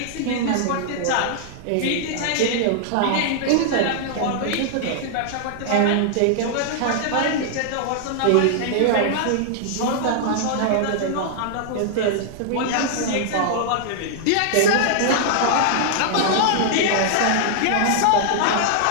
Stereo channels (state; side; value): different; both; correlation -0.01